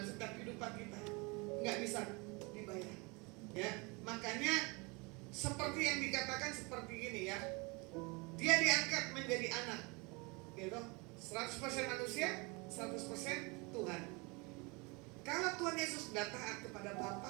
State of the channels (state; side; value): quieter; left; 28.3 dB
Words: setiap kehidupan kita, nggak bisa dibayar, ya. Makanya seperti yang dikatakan seperti ini, ya, dia diangkat menjadi anak, gitu, 100% manusia, 100% Tuhan. Kalau Tuhan Yesus sudah taat kepada